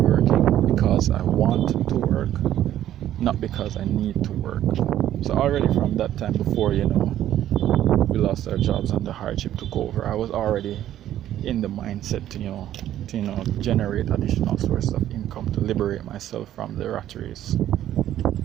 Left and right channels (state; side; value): quieter; left; 12.1 dB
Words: because I want to work, not because I need to work. So already from that time before, we lost our jobs and the hardship took over, I was already in the mindset to generate additional sources of income to liberate myself from the rat race.